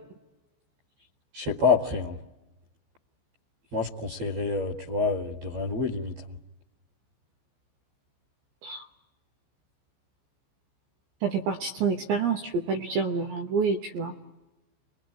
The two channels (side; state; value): left; late; 14 ms